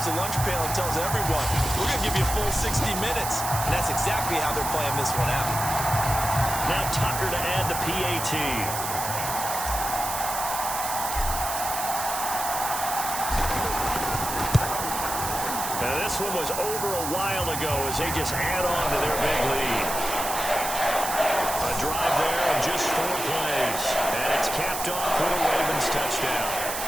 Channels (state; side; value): noise; right; hiss, 4 dB below the sound